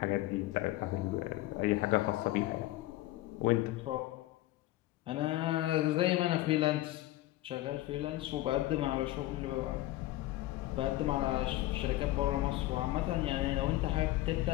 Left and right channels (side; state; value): right; quieter; 16.3 dB